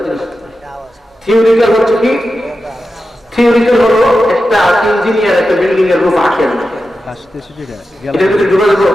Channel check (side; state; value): both; normal; correlation 0.91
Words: জিনিস। থিওরিক্যাল হচ্ছে কি? থিওরিক্যাল হলো একটা ইঞ্জিনিয়ার একটা বিল্ডিং এর রূপ আঁকেন, এটা যদি ডুবে দেবো